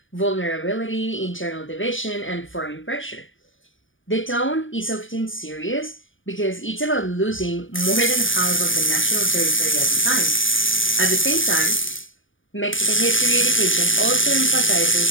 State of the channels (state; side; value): late; right; 0.57 ms